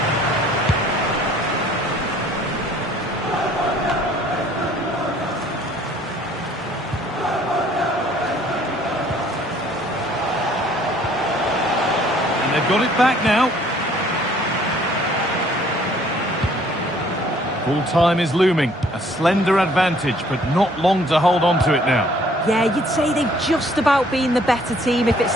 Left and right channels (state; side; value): normal; both; correlation 0.59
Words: They've got it back now. Full time is looming. A slender advantage, but not long to hold on to it now. Yeah, you'd say they've just about been the better team if it